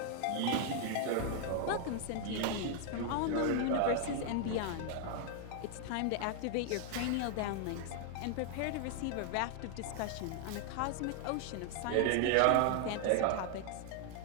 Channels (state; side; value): different; both; correlation 0.00